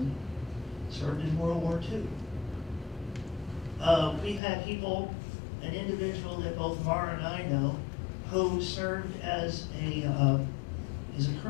served in World War II. We've had people, an individual that both Mara and I know, who served as a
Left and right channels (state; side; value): drops out; right; at 4.4 s